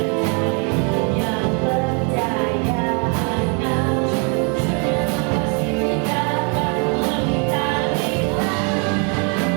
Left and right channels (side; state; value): left; quieter; 36.8 dB